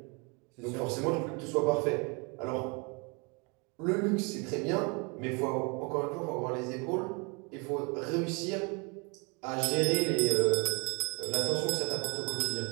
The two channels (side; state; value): left; quieter; 31.7 dB